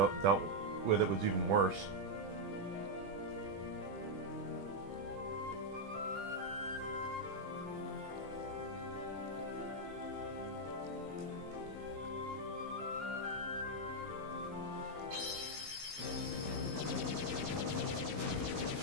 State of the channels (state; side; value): late; left; 21 ms